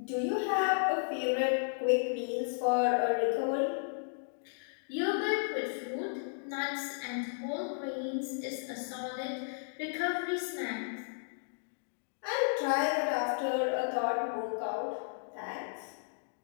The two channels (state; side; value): silent; right; digital silence